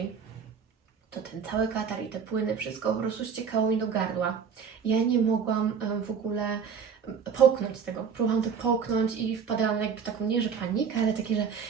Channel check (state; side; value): quieter; left; 6.6 dB